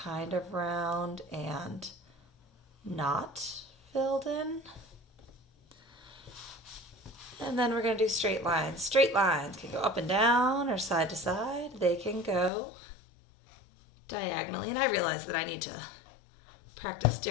of round and not filled in. And then we're going to do straight lines. Straight lines can go up and down or side to side. They can go diagonally. And I realize that I need to practice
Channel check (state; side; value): drops out; right; at 12.5 s